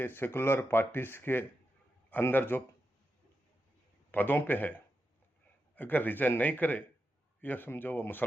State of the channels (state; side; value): normal; both; correlation 0.88